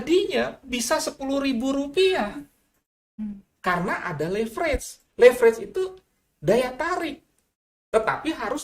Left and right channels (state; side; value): identical; both; correlation 1.00